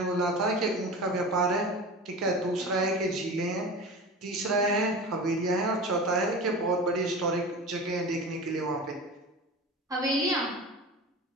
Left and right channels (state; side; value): normal; both; correlation 0.32